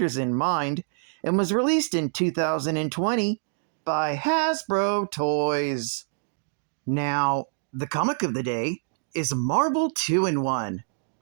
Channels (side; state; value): left; silent; digital silence